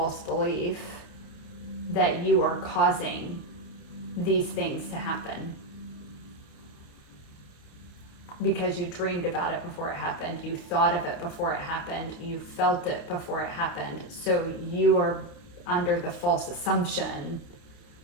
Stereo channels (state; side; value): late; right; 29 ms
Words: belief that you are causing these things to happen because you dreamed about it before it happened, you thought of it before it happened, you felt it before it happened. So you are under the false assumption